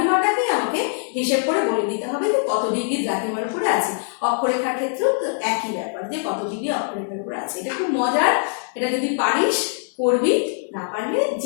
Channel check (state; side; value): silent; right; digital silence